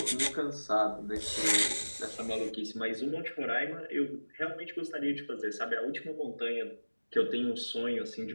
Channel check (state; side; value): inverted; both; correlation -1.00